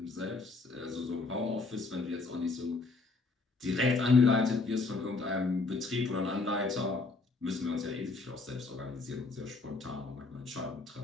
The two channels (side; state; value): right; quieter; 3.8 dB